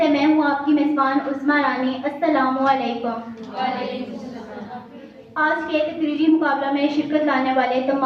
मैं हूँ आपकी मेज़बान उस्मा रानी। अस्सलामु अलैकुम। आज के तकरीरी मुकाबला में शिरकत लाने वाले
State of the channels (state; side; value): identical; both; correlation 1.00